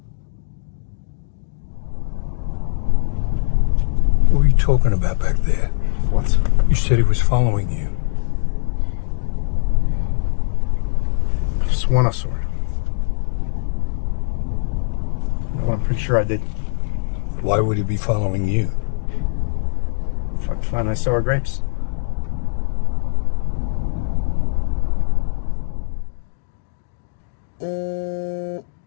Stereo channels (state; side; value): silent; right; 65 dB below the other